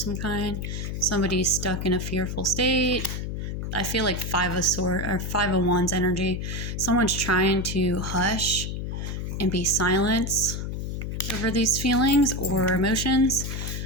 kind. Somebody's stuck in a fearful state. I feel like Five of Wands energy. Someone's trying to hush and be silence over these feelings or emotions.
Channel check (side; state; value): left; noise; hum, 4 dB below the sound